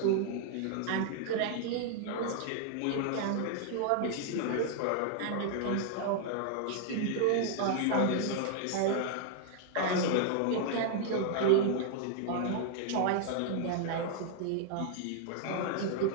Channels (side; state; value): both; different; correlation 0.00